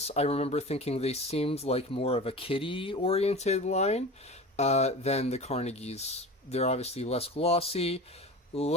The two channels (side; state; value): both; normal; correlation 0.33